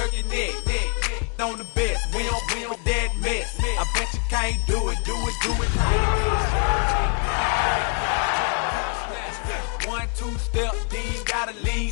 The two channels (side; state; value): right; quieter; 39.4 dB